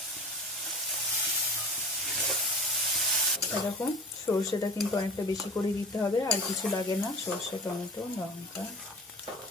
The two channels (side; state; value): both; normal; correlation 0.37